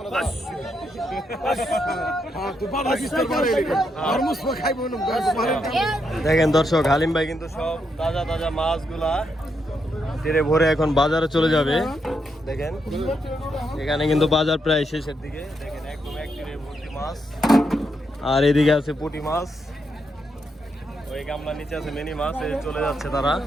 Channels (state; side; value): normal; both; correlation 0.80